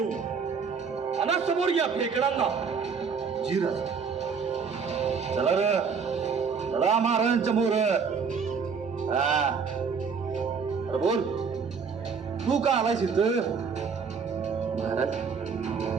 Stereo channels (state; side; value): quieter; left; 5.8 dB